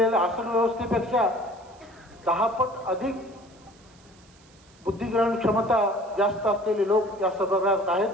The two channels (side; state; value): right; noise; hiss, 29 dB below the sound